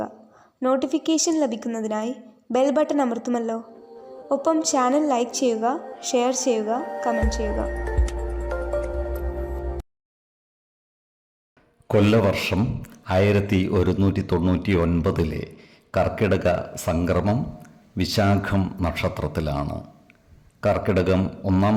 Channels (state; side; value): identical; both; correlation 1.00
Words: നോട്ടിഫിക്കേഷൻ ലഭിക്കുന്നതിനായി ബെൽ ബട്ടൺ അമർത്തുമല്ലോ. ഒപ്പം ചാനൽ ലൈക്ക് ചെയ്യുക, ഷെയർ ചെയ്യുക, കമൻറ്റ് ചെയ്യുക. കൊല്ലവർഷം 1199 കർക്കിടക സംക്രമം വിശാഖം നക്ഷത്രത്തിലാണ്. കർക്കിടകം 1-ാം